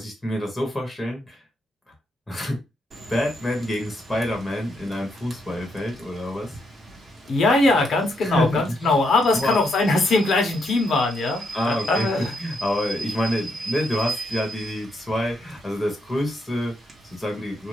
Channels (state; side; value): normal; both; correlation 0.78